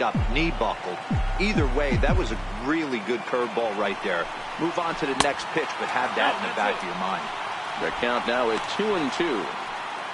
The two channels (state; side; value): identical; both; correlation 1.00